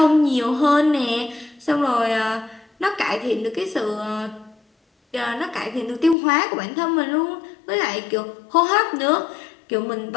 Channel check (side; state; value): right; drops out; at 6.2 s